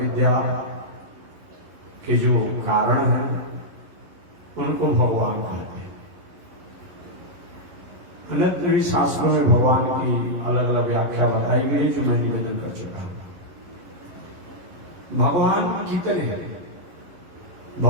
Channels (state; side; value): late; left; 11 ms